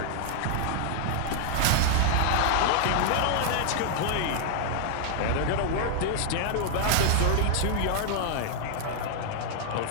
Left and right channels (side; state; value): both; different; correlation -0.01